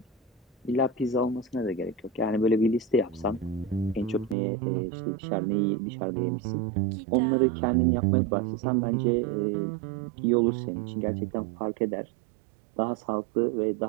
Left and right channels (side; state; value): left; drops out; at 4.4 s